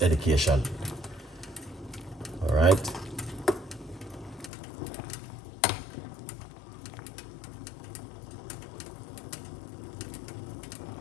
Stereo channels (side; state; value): right; drops out; at 4.5 s